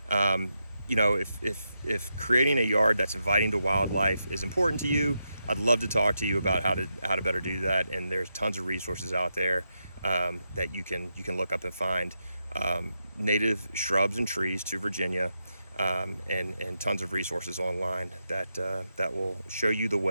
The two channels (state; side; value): inverted; both; correlation -0.85